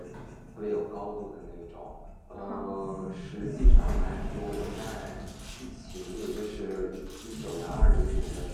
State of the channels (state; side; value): identical; both; correlation 1.00